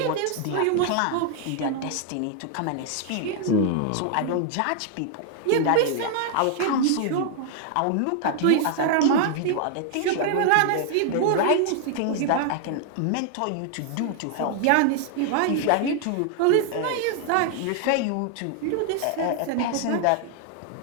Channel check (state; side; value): different; both; correlation 0.00